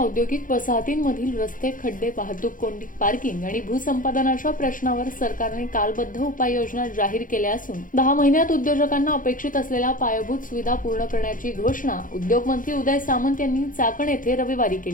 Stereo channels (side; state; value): right; late; 0.39 ms